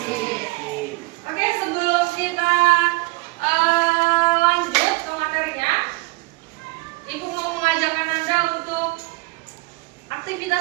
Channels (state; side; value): quieter; left; 25.7 dB